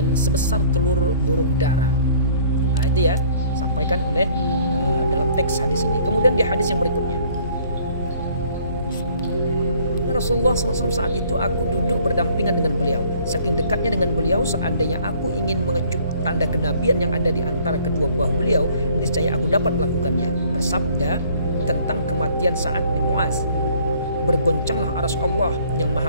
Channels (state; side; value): inverted; both; correlation -0.57